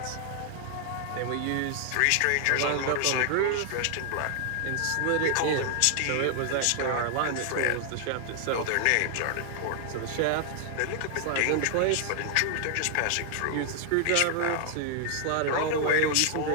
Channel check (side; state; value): both; different; correlation 0.00